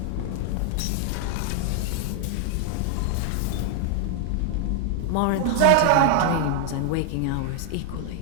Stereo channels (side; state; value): both; different; correlation 0.00